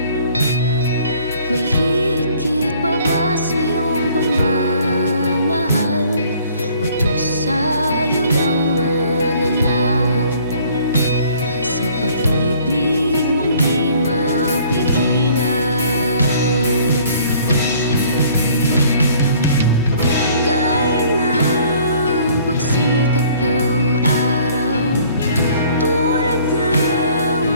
May higit pa ba sa iyong pagmamahal, o Diyos sa'yo lang mananahan? Sa pag-ibig mong di mapigilan, gaya ng pagsikat ng araw, tulad ng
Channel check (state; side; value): inverted; both; correlation -0.57